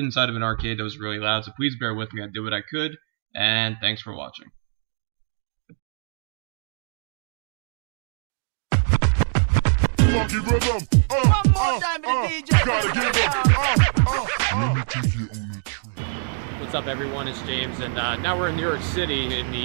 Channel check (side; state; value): left; silent; digital silence